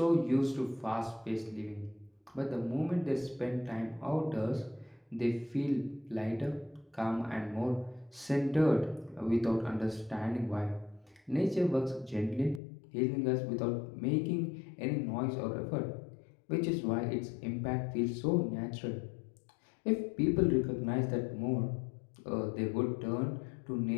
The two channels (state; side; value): drops out; right; at 12.6 s